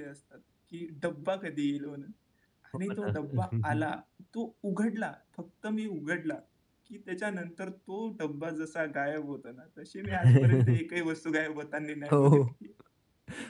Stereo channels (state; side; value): identical; both; correlation 1.00